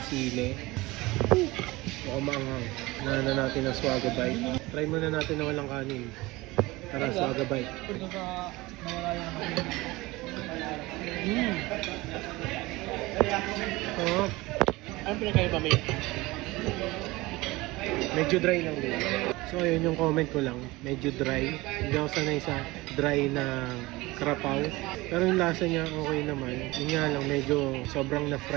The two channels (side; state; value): left; quieter; 20.9 dB